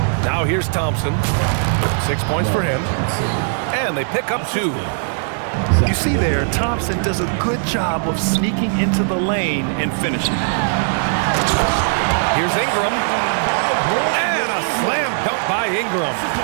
Now here's Thompson. 6 points for him. And they pick up 2. You see there, Thompson does a good job of sneaking into the lane and finishing. Here's Ingram. And a slam dunk by Ingram.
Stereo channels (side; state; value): left; silent; digital silence